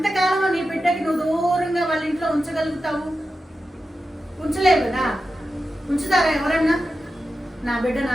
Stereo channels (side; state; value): both; normal; correlation 0.91